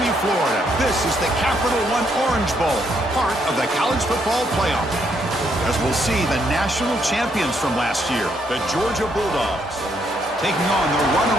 Florida. This is the Capital One Orange Bowl, part of the college football playoff. As we'll see the national champions from last year, the Georgia Bulldogs, taking on the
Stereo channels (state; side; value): normal; both; correlation 0.73